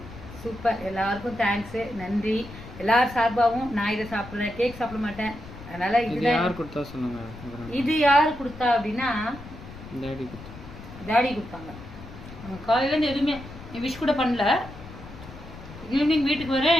சூப்பர், எல்லாருக்கும் தேங்க்ஸு, நன்றி. எல்லார் சார்பாகவும் நான் இதை சாப்பிட்றேன். கேக் சாப்பிட மாட்டேன், அதனால இது யார் கொடுத்தா சொன்னாங்க. இது யார் கொடுத்தா அப்படின்னா டாடி கொடுத்தாங்க. காலையிலேருந்து எதுவுமே விஷ் கூட பண்ணல. ஈவினிங் வீட்டுக்கு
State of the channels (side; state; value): left; noise; rumble, 15 dB below the sound